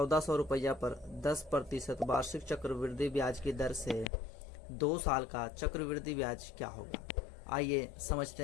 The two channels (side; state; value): right; drops out; at 4.1 s